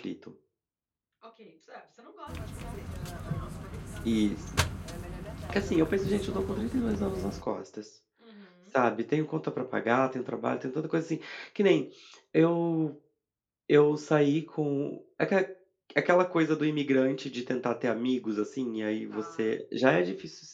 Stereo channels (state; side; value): identical; both; correlation 1.00